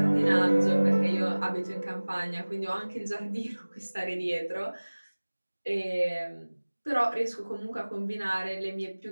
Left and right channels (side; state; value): both; inverted; correlation -1.00